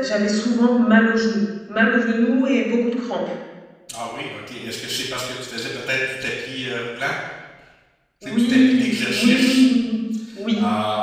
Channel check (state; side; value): identical; both; correlation 1.00